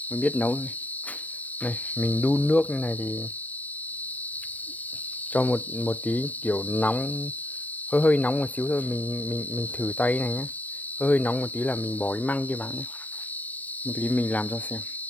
mới biết nấu thôi. Này mình đun nước như này thì cho một tí kiểu nóng, hơi nóng một xíu thôi, mình thử tay này nhé, hơi nóng một tí là mình bỏ cái măng kia vào nhé. Một tí mình làm cho xem.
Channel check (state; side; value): late; right; 0.080 ms